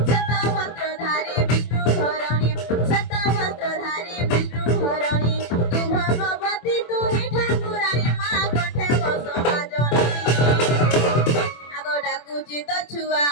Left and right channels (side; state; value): right; late; 24 ms